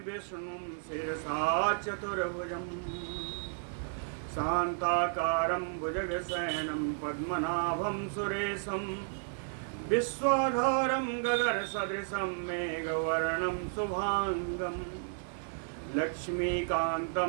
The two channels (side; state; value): left; silent; digital silence